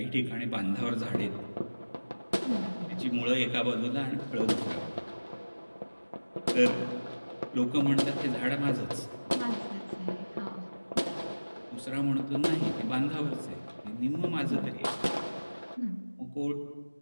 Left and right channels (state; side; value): inverted; both; correlation -1.00